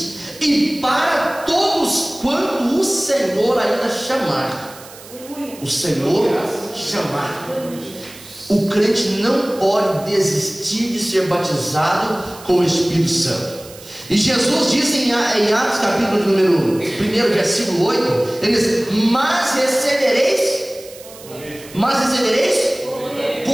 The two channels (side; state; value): right; noise; hiss, 19 dB below the sound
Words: e para todos quanto o Senhor ainda chamar. O Senhor chamar. O crente não pode desistir de ser batizado com o Espírito Santo. E Jesus diz em Atos capítulo número 1, versículo 8, ele diz: mas recebereis